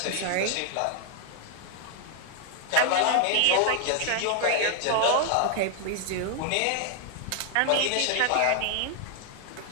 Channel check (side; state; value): both; different; correlation 0.00